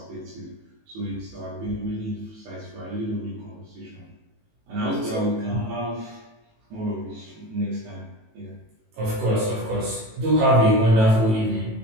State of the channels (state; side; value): late; left; 18 ms